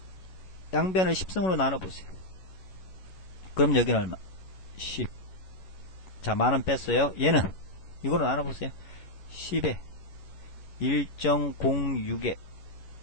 양변을 10승으로 나눠보세요. 그럼 여기는 얼마? 10. 자 만원 뺐어요. 얘는 이거로 나눠보세요. 10에 1.06에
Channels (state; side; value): late; right; 11 ms